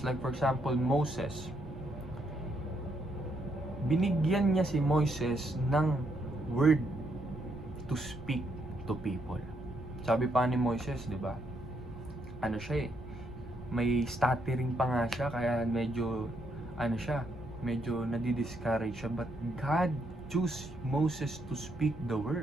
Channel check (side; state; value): right; noise; rumble, 16 dB below the sound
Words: like for example Moses, binigyan niya si Moises ng word to speak to people. Sabi pa ni Moises, di ba? Ano siya may stuttering pa nga siya, kaya medyo nadi-discourage siya. But God chose Moses to speak the